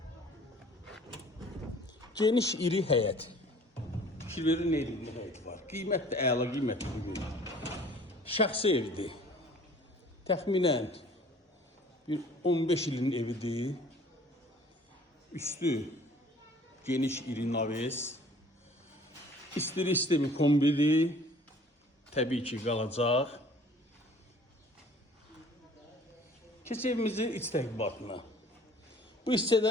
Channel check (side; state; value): both; normal; correlation 0.52